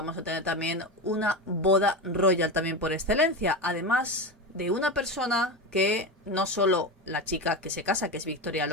a tener también una boda royal también por excelencia. Además de una persona que no solo la chica que se casa, que es Victoria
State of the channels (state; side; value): normal; both; correlation 0.20